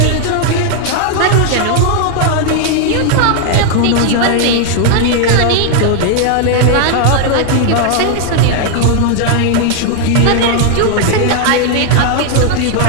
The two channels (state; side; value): different; both; correlation 0.00